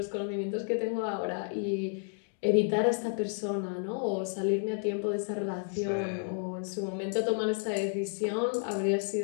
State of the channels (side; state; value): right; silent; 57 dB below the other